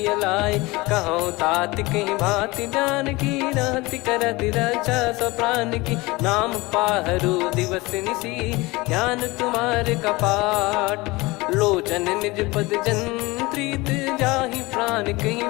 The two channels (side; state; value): right; quieter; 22.5 dB